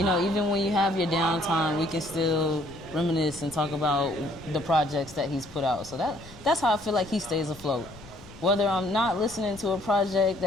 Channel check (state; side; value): noise; left; rumble, 19 dB below the sound